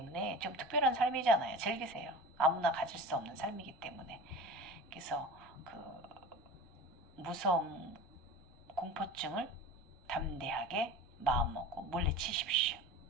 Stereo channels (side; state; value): both; normal; correlation 0.35